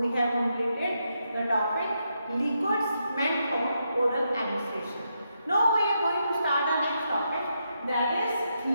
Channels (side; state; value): both; inverted; correlation -0.82